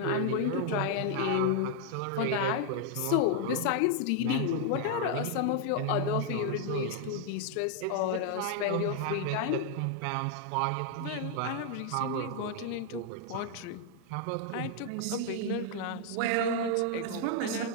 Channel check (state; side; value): different; both; correlation 0.00